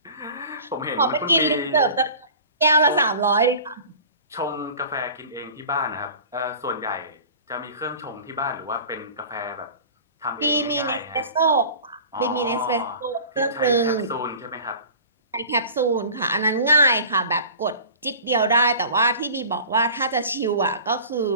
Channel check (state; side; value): inverted; both; correlation -0.41